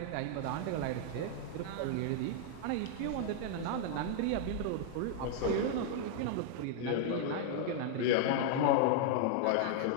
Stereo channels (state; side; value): different; both; correlation -0.01